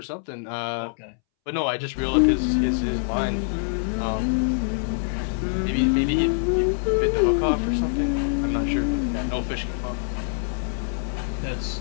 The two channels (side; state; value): right; silent; 62 dB below the other